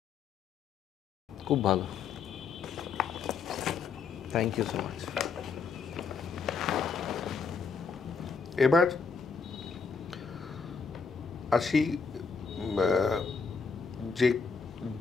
খুব ভালো। Thank you so much. এবার আসি যে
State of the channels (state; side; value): quieter; right; 5.4 dB